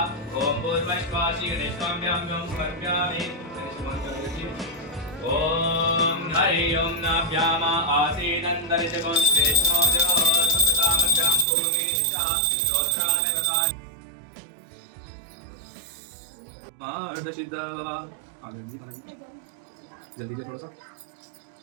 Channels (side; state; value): left; drops out; at 11.5 s